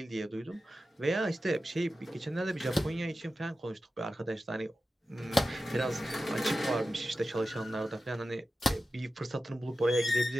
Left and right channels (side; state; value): both; normal; correlation 0.93